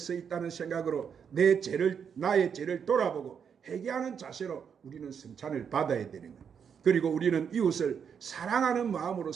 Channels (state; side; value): quieter; left; 7.2 dB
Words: 있다는 생각으로 나의 죄를 돌아보고 회개하는 자세로 우리는 성찬을 받아야 되는 거예요. 그리고 우리는 이웃을 사랑하는 마음으로